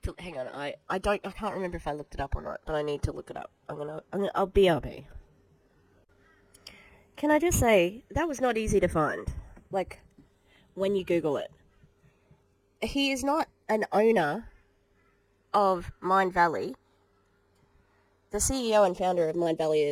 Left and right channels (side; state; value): both; identical; correlation 1.00